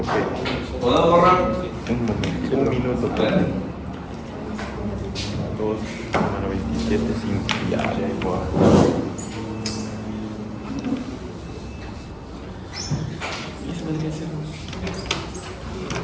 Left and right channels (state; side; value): identical; both; correlation 1.00